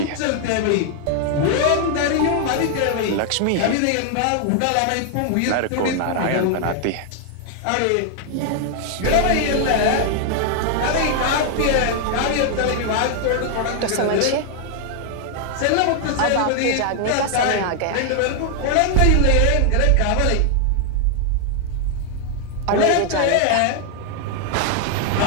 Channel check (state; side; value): different; both; correlation 0.00